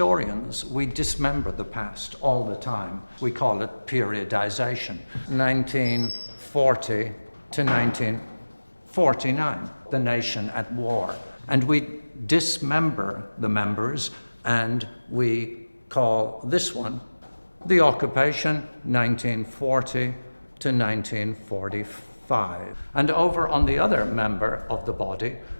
we dismember the past all the time. We call it periodization. 1940 to 1949, the nation at war. And we dismember the members, and we call this one the occupation, 1940 to 1945. And over on the other member of the body,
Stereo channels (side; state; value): both; inverted; correlation -1.00